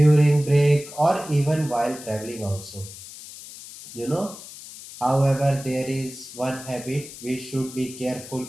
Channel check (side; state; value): left; noise; hiss, 15 dB below the sound